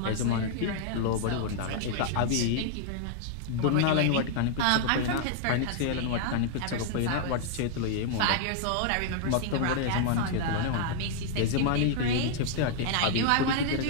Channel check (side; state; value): both; different; correlation -0.01